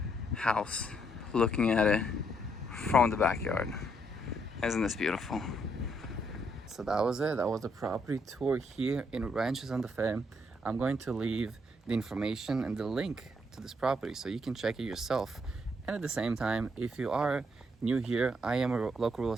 house, looking at it from the backyard. Isn't this beautiful? So that was it. That was the property tour here in Rancho Santa Fe. I'm going to leave the information and the link to this property so you can check it yourself. And at the same time, if you are new here, I am a local real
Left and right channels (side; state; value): both; normal; correlation 0.73